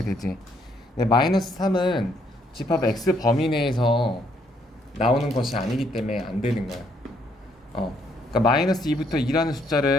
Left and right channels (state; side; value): normal; both; correlation 0.70